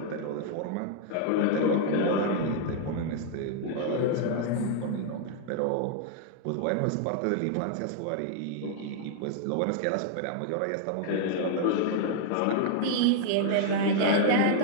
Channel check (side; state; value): both; different; correlation 0.00